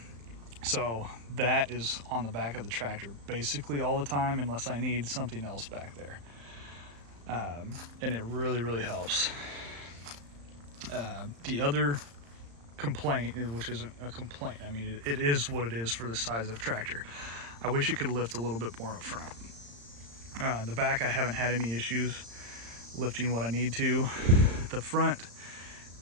So that is on the back of the tractor basically all the time, unless I need something else back there. And it really helps. The other complaint, which isn't a complaint, I mean, it is what it is for the size of tractor. I wish it could lift a little bit more up front. The back, I haven't had any issues lifting what I need to. The front,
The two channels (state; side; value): late; left; 35 ms